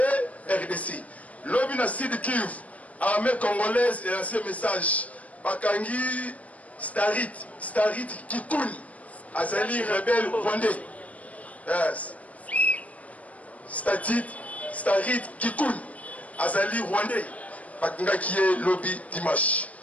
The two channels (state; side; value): late; right; 0.068 ms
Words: RDC lobi na Sud Kivu armée congolaise et lancé message bakangi Starit Kikuni azali rebelle rwandais Starit Kikuni azali rwandais Bakanga qui est lobby dimanche.